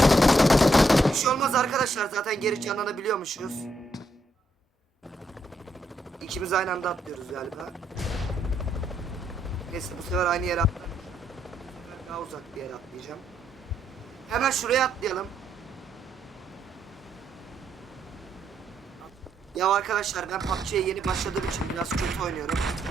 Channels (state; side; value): normal; both; correlation 0.76